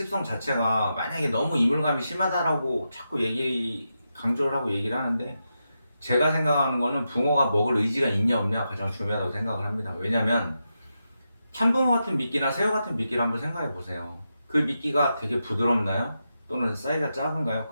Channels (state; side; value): inverted; both; correlation -0.87